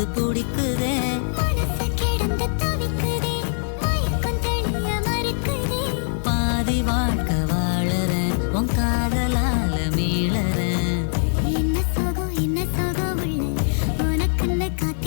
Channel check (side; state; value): right; silent; 64 dB below the other